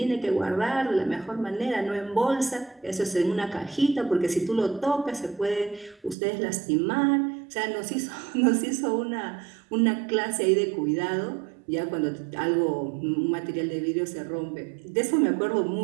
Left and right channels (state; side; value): drops out; left; at 6.2 s